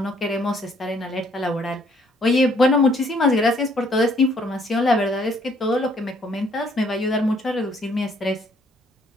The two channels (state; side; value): normal; both; correlation 0.65